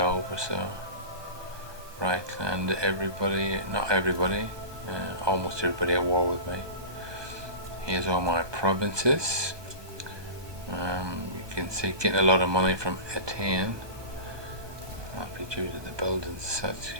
or so. Reichland, everybody, not everybody, almost everybody at war with me. Here's all my provinces. You can see getting a lot of money from Etienne. That'll be due to the buildings such.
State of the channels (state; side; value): late; left; 1.2 ms